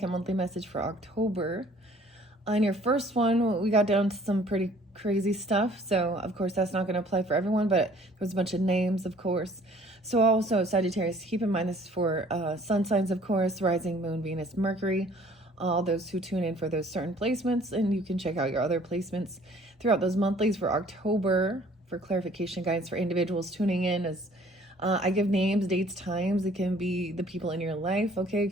monthly message for October. On your first one, we got down to some pretty crazy stuff. So, of course, that's not going to apply for everyone, but there's a bunch of names, of course. So, also, Sagittarius, keep in mind this is for sun signs, of course, rising, moon, Venus, Mercury. All those who tune in for those certain placements, and you can check out your other placements throughout those monthlies for October for clarification guides for individuals tuning in as I give names, dates, times. It can be the people in your life, okay? It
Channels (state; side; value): normal; both; correlation 0.56